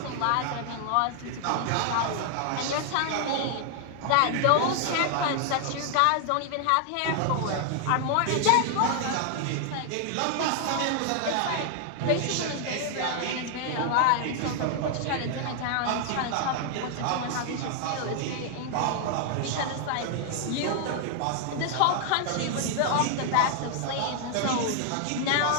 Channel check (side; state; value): both; different; correlation 0.00